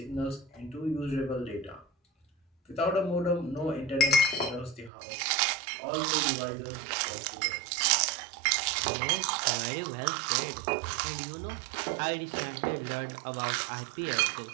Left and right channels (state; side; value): drops out; left; at 4.9 s